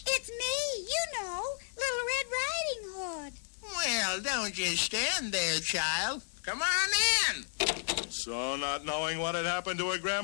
It's me, you know, Little Red Riding Hood. Well, don't just stand there, child. Come on in. So, not knowing what had happened to her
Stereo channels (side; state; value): right; silent; digital silence